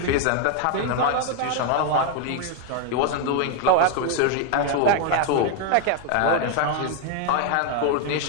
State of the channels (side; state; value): both; different; correlation 0.01